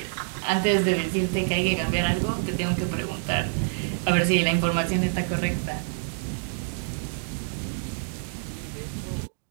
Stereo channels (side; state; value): left; silent; digital silence